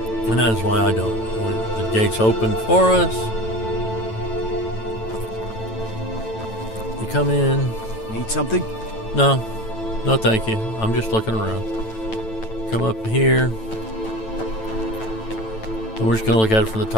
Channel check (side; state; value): right; late; 9.0 ms